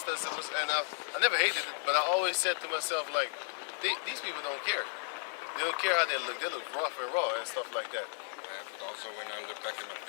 and I never hated it, but I always said to myself, like, these people don't care. They don't care how they look. They look rough and raw and stuff like that. But also when I look back at my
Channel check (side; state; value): right; silent; 55 dB below the other